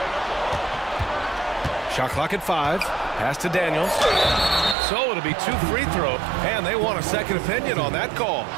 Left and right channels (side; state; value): left; drops out; at 4.8 s